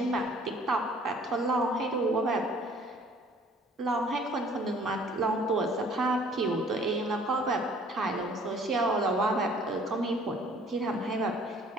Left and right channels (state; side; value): normal; both; correlation 0.55